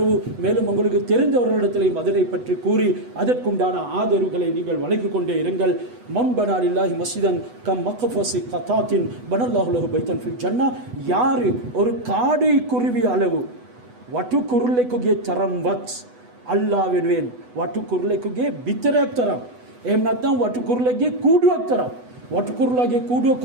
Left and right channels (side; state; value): left; late; 8.1 ms